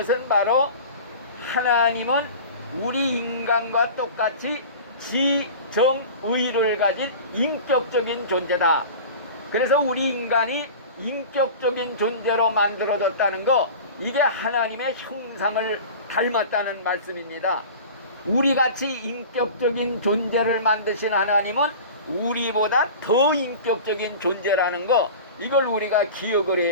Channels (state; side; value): inverted; both; correlation -0.36